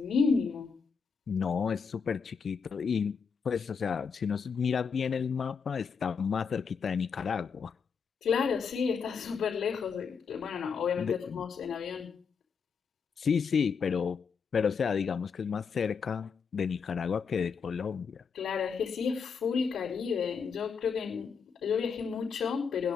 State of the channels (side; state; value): right; quieter; 6.0 dB